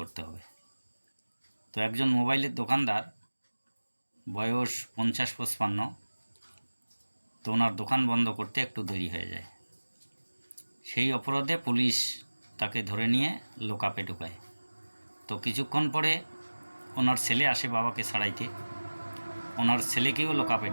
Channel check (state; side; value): inverted; both; correlation -1.00